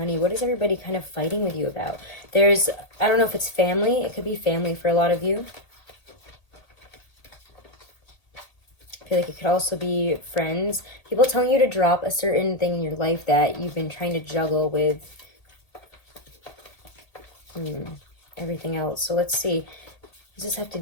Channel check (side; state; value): right; late; 1.8 ms